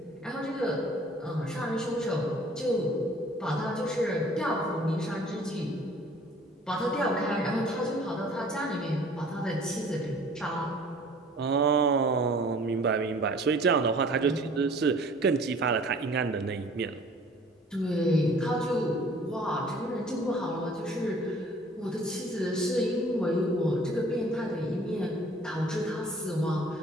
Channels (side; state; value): both; normal; correlation 0.51